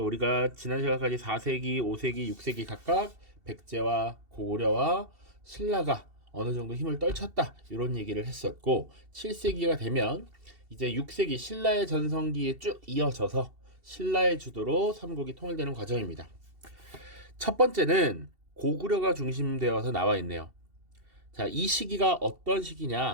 우리가 지난 시간까지 4세기, 5세기, 6세기 각각 백제와 고구려와 신라가 어느 정도 힘을 떨쳤다 이런 얘기를 했었고, 7세기가 되면 이제 6세기 신라의 전성기에 쭉 이어져서 신라의 주도로 삼국이 통일되는 과정입니다. 첫 번째는 고구려가 중심되어서 나와 있네요. 자, 이 시기가 어떤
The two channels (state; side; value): late; left; 2.7 ms